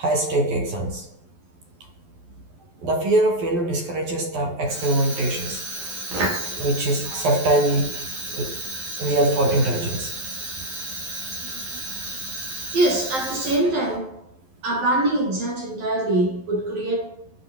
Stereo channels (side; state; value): left; late; 11 ms